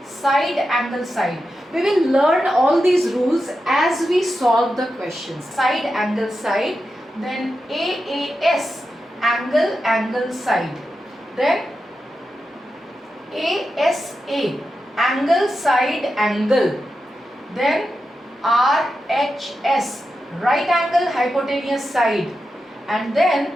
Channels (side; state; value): both; normal; correlation 0.89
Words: side, angle, side. We will learn all these rules as we solve the questions. Side, angle, side. Then AAS, angle, angle, side. Then ASA, angle, side, angle. Then RHS, right angle, hypotenuse, side. And then